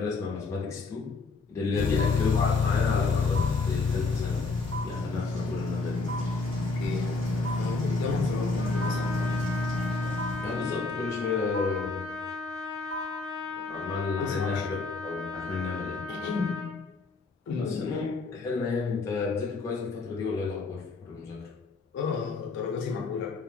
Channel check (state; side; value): quieter; right; 3.9 dB